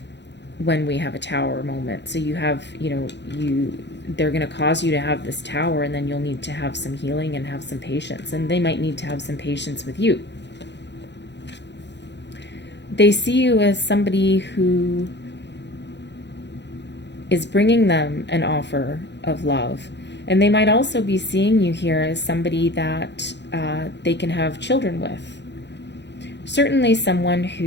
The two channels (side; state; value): right; late; 0.51 ms